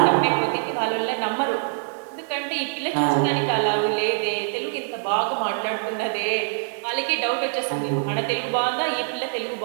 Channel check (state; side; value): silent; left; 63 dB below the other